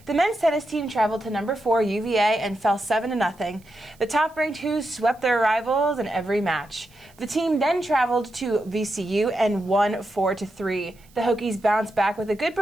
The men's tennis team traveled to number 4 UVA and fell 7-0. The top-ranked Hoos swept their rivals in every match. The team then traveled to VCU and won 4-3. The Hokies bounced back with a good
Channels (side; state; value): right; noise; hiss, 29 dB below the sound